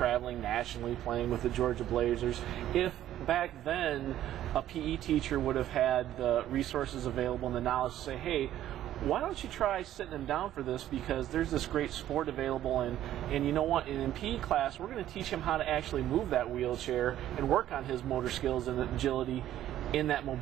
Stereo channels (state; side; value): quieter; left; 12.4 dB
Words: nationally, playing with the Georgia Blazers, if back then a PE teacher would have had the resources available and the knowledge to say, hey, why don't you try sitting him down for this, because there's this great sport available, and you know what, in PE class we're going to teach him how to actually move that wheelchair and work on his motor skills and agility in that